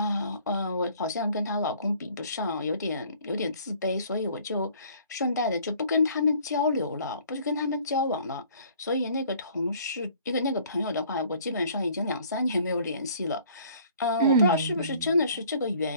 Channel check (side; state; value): both; inverted; correlation -0.56